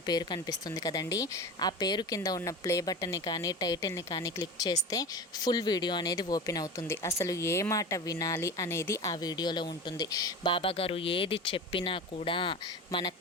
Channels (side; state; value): both; normal; correlation 0.30